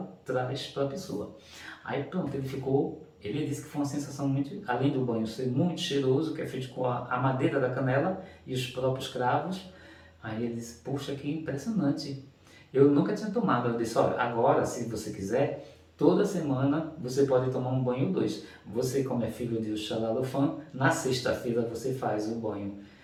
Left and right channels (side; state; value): both; identical; correlation 1.00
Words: traz para a pessoa. Aí pronto, ele disse que foi uma sensação muito, além do banho ser muito cheiroso, que é feito com a madeira da canela e os próprios cravos. Aí ele disse, puxa, que impressionante. Eu nunca tinha tomado. Eu disse, olha, agora se você quiser, toda semana você pode tomar um banho ou dois. Você, como é filho de Oxalá-Lofã, na sexta-feira você faz o banho